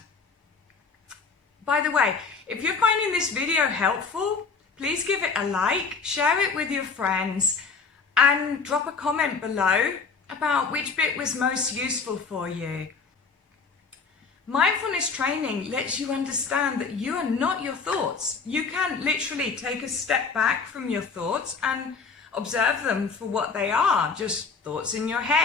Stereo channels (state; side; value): quieter; right; 5.1 dB